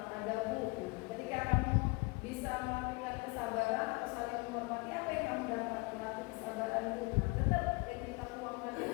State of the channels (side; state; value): right; quieter; 27.8 dB